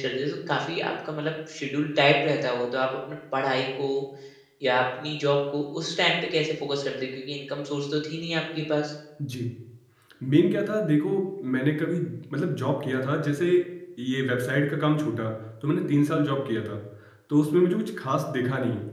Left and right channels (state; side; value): identical; both; correlation 1.00